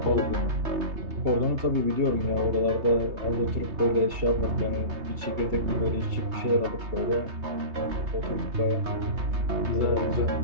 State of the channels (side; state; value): left; late; 3.3 ms